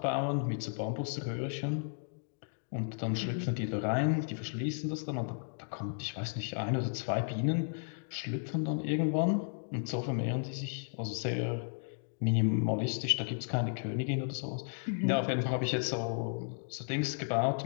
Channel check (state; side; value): silent; right; digital silence